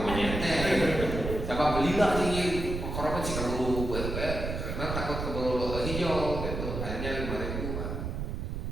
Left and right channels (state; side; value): noise; right; rumble, 4 dB below the sound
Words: teh. Coba belilah tinggi, korban sih kalau karena takut keburu hijau gitu. Akhirnya 5.000 Pak.